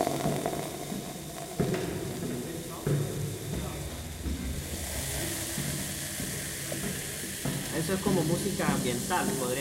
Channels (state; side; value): identical; both; correlation 1.00